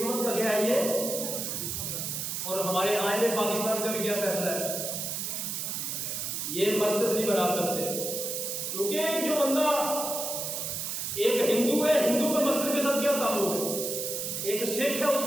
کا کیا ہے یہ؟ اور ہمارے آئین پاکستان کا بھی کیا فیصلہ ہے؟ یہ مسجد نہیں بنا سکتے، کیونکہ ایک جو بندہ ایک ہندو ہے، ہندو کا مسجد کے ساتھ کیا تعلق ہے؟ ایک سکھ ہے، اس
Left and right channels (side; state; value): right; noise; hiss, 3 dB below the sound